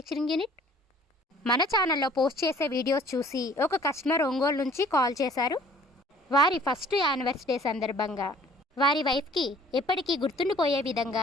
unit. మన ఛానల్లో పోస్ట్ చేసే వీడియోస్ చూసి ఒక కస్టమర్ ఒంగోలు నుంచి కాల్ చేశారు. వారి ఫస్ట్ యానివర్సరీ సందర్భంగా వారి వైఫ్కి ఎప్పటికీ గుర్తుండిపోయే విధంగా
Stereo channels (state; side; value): normal; both; correlation 0.54